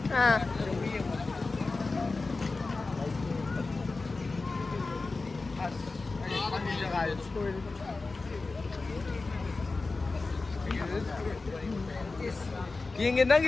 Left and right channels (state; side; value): quieter; right; 3.7 dB